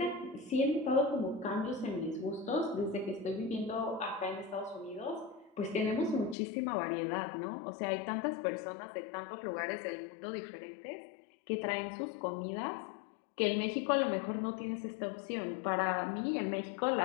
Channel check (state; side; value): drops out; right; at 6.4 s